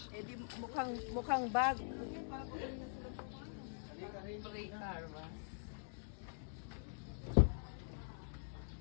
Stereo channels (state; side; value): silent; right; digital silence